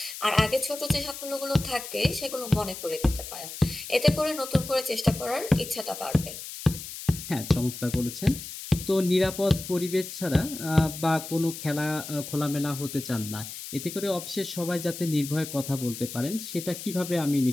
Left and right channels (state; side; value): noise; left; hiss, 10 dB below the sound